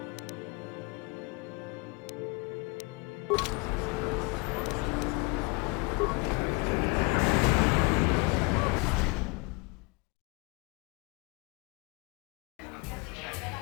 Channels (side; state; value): right; quieter; 29.2 dB